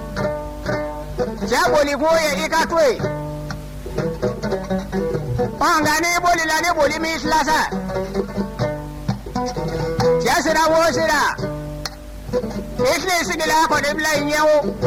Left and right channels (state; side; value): identical; both; correlation 1.00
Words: Jaboli koye ikatwe Pangani boli lani boli mislasa Jasira wosira Ikli sigila ko dibla inyewo